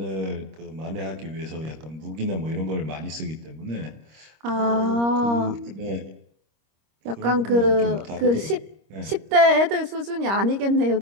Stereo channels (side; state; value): left; late; 26 ms